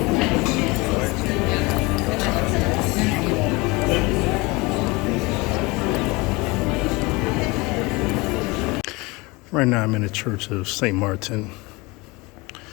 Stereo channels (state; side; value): quieter; right; 24.6 dB